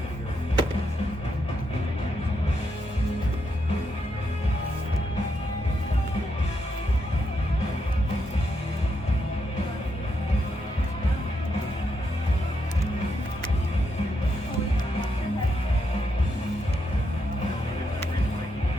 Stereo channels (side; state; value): both; normal; correlation 0.81